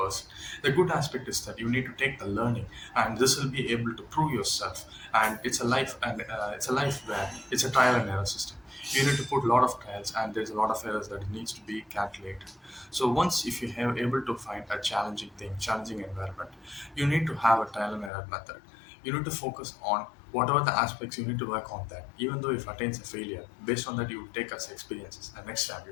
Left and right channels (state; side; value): drops out; right; at 18.1 s